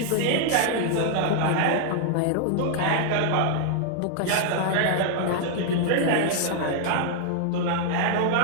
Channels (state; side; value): different; both; correlation 0.00